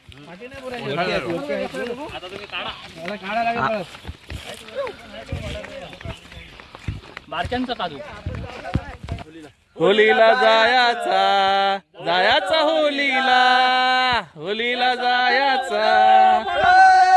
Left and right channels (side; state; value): both; identical; correlation 1.00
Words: बारक्यांचा काजू होलीला जायाचा होलीला जायाचा